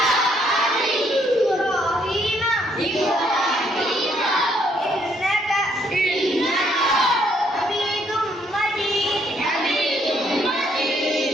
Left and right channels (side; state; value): both; normal; correlation 0.69